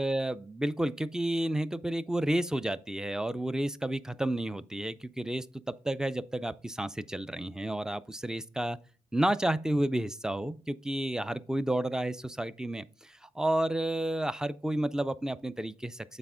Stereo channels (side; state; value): both; normal; correlation 0.94